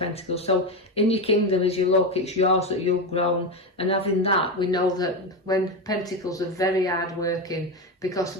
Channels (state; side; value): normal; both; correlation 0.15